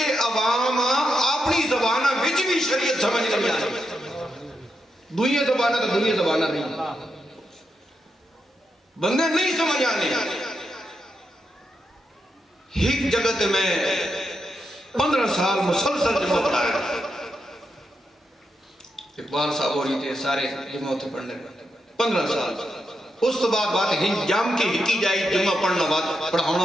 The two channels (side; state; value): both; normal; correlation 0.85